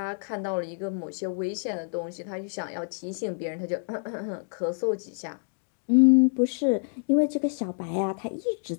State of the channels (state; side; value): silent; right; digital silence